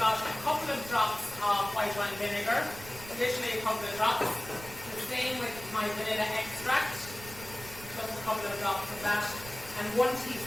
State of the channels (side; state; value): right; noise; rumble, 16 dB below the sound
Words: a couple of drops of white wine vinegar, additionally a couple of drops. The same with my vanilla extract, just a couple of drops of that, and 1